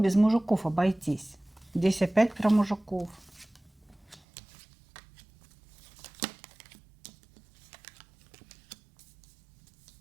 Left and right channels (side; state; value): left; drops out; at 4.2 s